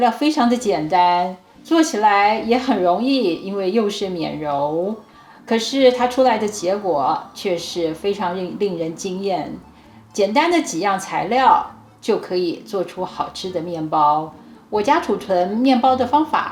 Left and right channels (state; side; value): identical; both; correlation 1.00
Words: 非常的简单，做起来也很容易，因为又是免揉。可是它出来的结果却是非常令人惊艳。简单的几样材料就可以做出好吃的面包。我家储存面包的方